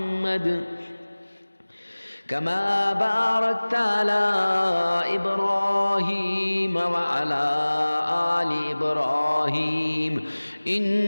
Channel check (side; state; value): both; inverted; correlation -1.00